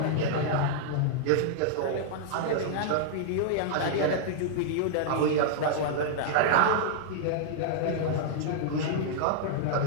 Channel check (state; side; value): different; both; correlation -0.01